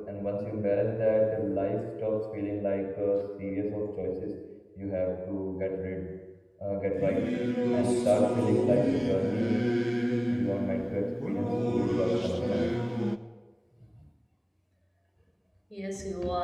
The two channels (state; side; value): identical; both; correlation 1.00